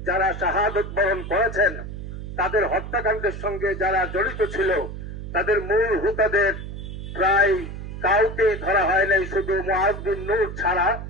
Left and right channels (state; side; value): noise; right; hum, 9 dB below the sound